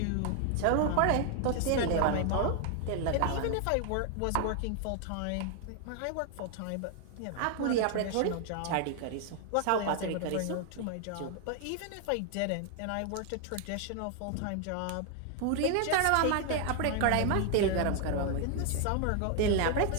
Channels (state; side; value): different; both; correlation 0.00